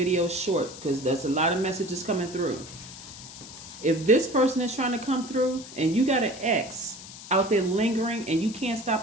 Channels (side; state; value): left; noise; hiss, 15 dB below the sound